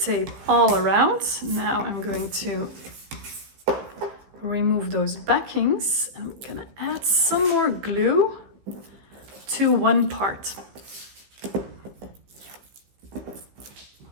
all around. Now I'm going to remove those backings. I'm gonna add some more glue to one part.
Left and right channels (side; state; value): left; late; 15 ms